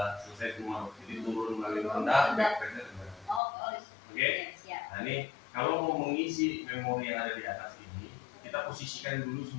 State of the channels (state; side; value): drops out; right; at 3.4 s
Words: selesai semua, jadi turun melalui rendah, reset rendah. Oke. Nah ini kalau mau mengisi memori yang ada di atas ini, kita posisikan dulu